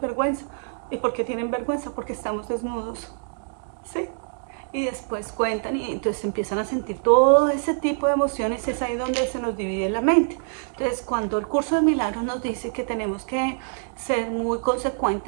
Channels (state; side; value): silent; left; digital silence